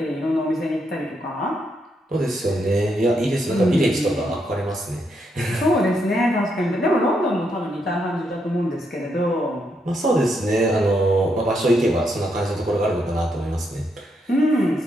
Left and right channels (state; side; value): normal; both; correlation 0.79